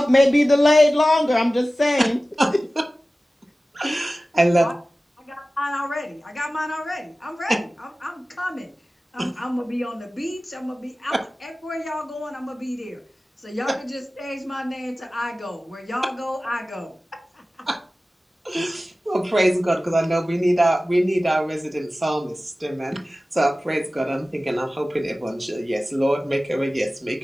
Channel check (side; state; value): both; normal; correlation 0.96